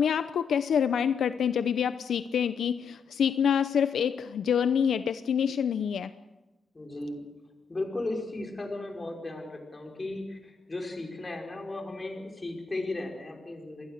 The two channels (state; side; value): quieter; right; 6.6 dB